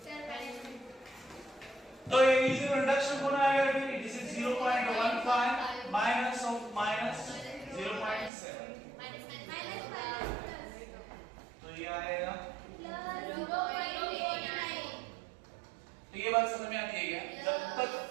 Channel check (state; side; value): drops out; left; at 8.3 s